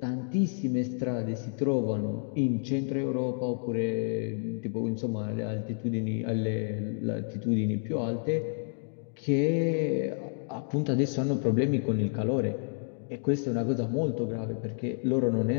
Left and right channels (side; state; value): right; silent; digital silence